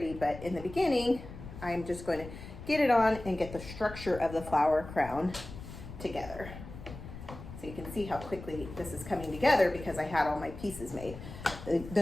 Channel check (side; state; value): left; noise; rumble, 13 dB below the sound